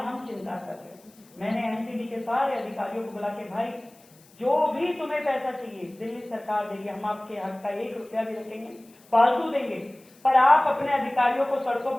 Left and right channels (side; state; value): left; noise; hiss, 28 dB below the sound